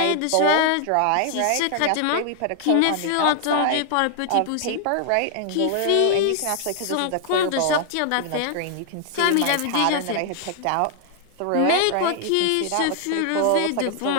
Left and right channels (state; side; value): different; both; correlation 0.00